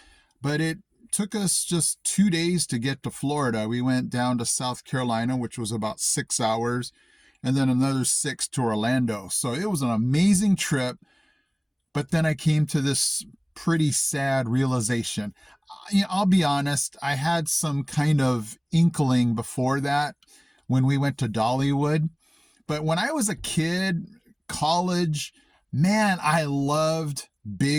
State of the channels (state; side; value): identical; both; correlation 1.00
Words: but it took us just 2 days to get to Florida. We went down to South Carolina, which was about 6 hours, and then another 6 to Orlando. So it was an amazing trip. But then I came to this pretty sad realization. I'll be honest, I had some kind of inkling before that when we went to Dollywood. But when I was a kid, college, man, I loved